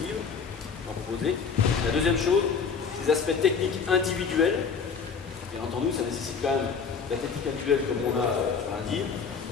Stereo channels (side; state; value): right; quieter; 5.9 dB